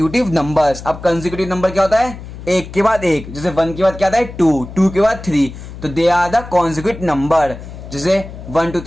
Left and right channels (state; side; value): noise; left; hum, 13 dB below the sound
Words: numbers. अब कंसेक्यूटिव नंबर क्या होता है, एक के बाद एक, जैसे 1 के बाद क्या आता है 2, 2 के बाद 3, तो they are the consecutive number, जैसे 1 2